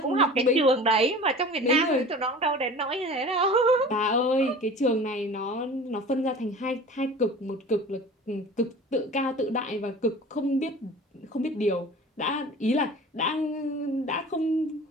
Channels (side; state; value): both; normal; correlation 0.40